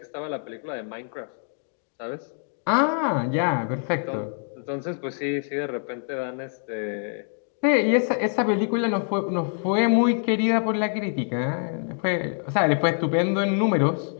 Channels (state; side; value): silent; right; 61 dB below the other